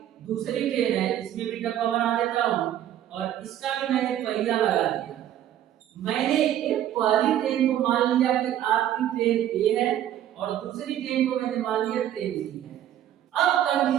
दूसरी ट्रेन है, इसमें भी डब्बा बना देता हूँ और इसका भी मैंने पहिया लगा दिया। मैंने एक पहली ट्रेन को मान लिया कि आपकी ट्रेन ए है और दूसरी ट्रेन को मैंने मान लिया ट्रेन बी है। अब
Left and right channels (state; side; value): quieter; left; 11.5 dB